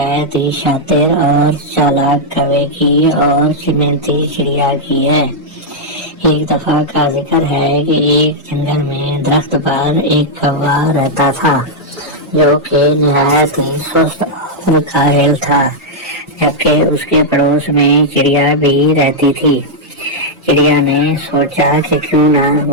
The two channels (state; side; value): normal; both; correlation -0.05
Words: ہی شاطر اور چالاک کوے کی اور محنتی چڑیا کی ہے۔ ایک دفعہ کا ذکر ہے کہ ایک جنگل میں درخت پر ایک کوا رہتا تھا جو کہ نہایت ہی سست اور کاہل تھا، جبکہ اس کے پڑوس میں چڑیا بھی رہتی تھی۔ چڑیا نے سوچا کہ کیوں نہ